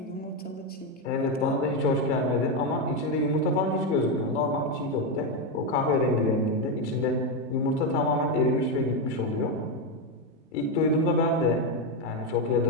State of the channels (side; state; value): both; normal; correlation 0.07